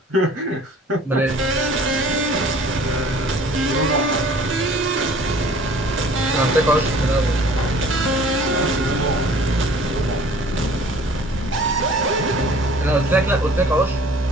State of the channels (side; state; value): both; normal; correlation 0.50